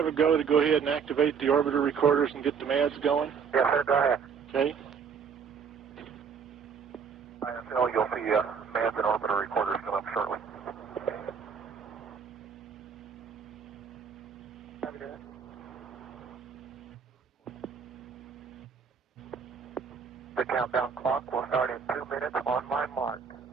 a go ahead and activate the orbiter recorders and get the MADs going? Yes, sir, go ahead. Okay. ISL, you'll see MADs and orbiter recorders come up shortly. The countdown clock will start in 2 minutes on my mark.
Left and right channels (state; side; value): quieter; left; 6.4 dB